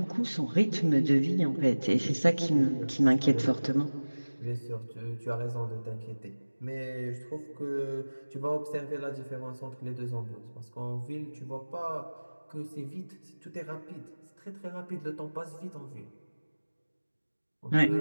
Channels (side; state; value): both; inverted; correlation -1.00